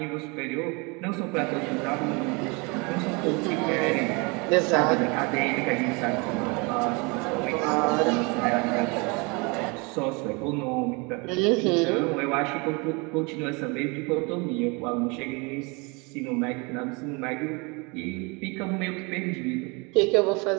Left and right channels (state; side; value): quieter; left; 29.3 dB